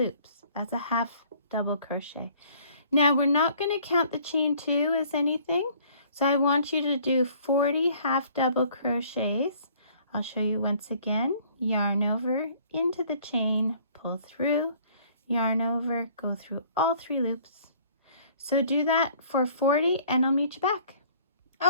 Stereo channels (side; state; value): both; inverted; correlation -0.56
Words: as a half double crochet. Now we're not going to count the chain 2 as anything, so I want you to do 40 half double crochets. I'll show you once again. Yarn over, into the chain, pull through, yarn over, go through all 3 loops. So do that for 40 and I'll meet you back.